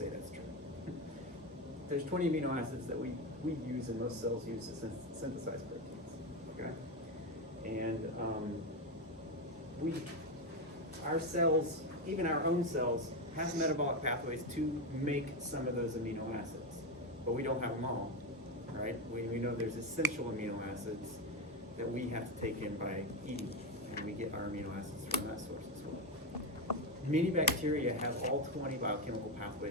that's true. There's 20 amino acids that we use and most cells use to synthesize proteins. Okay, and our cells, even our own cells, have metabolic pathways to make some of those amino acids, but we don't have them all. Right? We know there's essential amino acids that we have to take in by eating, and we get our amino acids from that source as well. Many bacteria have all 20 biochemical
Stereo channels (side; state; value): both; normal; correlation 0.11